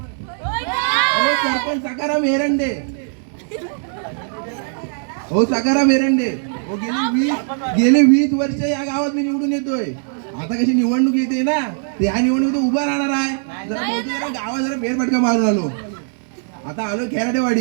हो सरपंच सकाराम एरंडे. हो सकाराम एरंडे. हो गेले 20 वर्ष या गावात मी निवडून येतोय. आता कशी निवडणूक येते ना, ते ह्या निवडणुकीत उभा राहणार आहे. जरा गावात जरा फेरफटका मारून आलो. आता आलो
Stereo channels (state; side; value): silent; left; digital silence